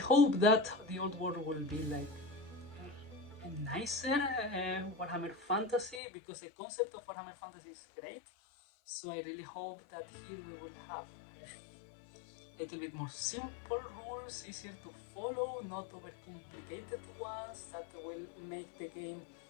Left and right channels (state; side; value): drops out; right; at 6.0 s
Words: that the Old World will be like a nicer Warhammer Fantasy, because the concept of Warhammer Fantasy is great. So I really hope that here we will have a little bit more simple rules, easier to follow, not overcomplicated ones that will make the game